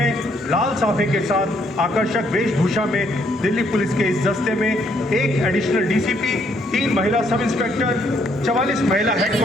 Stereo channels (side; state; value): both; normal; correlation 0.70